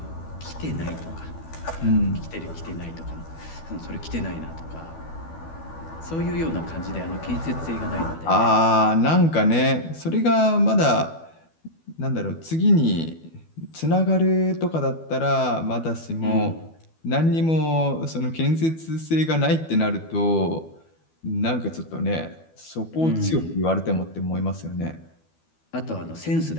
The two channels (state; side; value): late; right; 12 ms